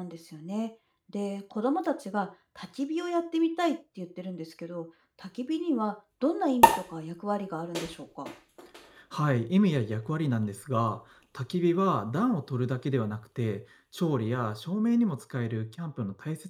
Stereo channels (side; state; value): both; identical; correlation 1.00